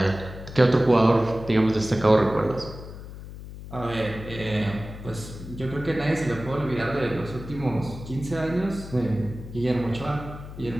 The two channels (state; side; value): noise; left; hum, 12 dB below the sound